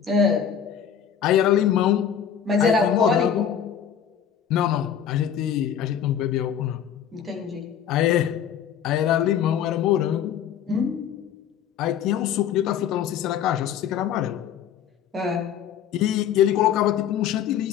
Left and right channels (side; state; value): right; quieter; 8.7 dB